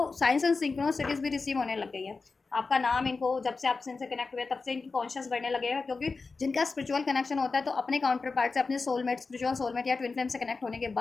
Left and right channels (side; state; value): right; quieter; 4.2 dB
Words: साइंस एंड सिंक्रोनिसिटीज भी रिसीव होने लग गई है। आपका नाम इनको, जब से आप इनसे कनेक्ट हुए तब से इनकी कॉन्शियस बढ़ने लगेगा, क्योंकि जिनका स्पिरिचुअल कनेक्शन होता है तो अपने काउंटर पार्ट से, अपने सोलमेट, स्पिरिचुअल सोलमेट या ट्विन फ्लेम से कनेक्ट होने के